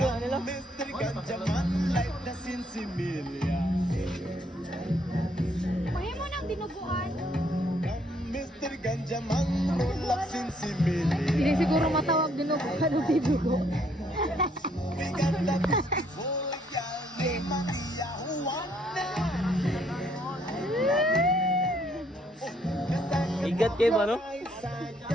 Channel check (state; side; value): normal; both; correlation 0.68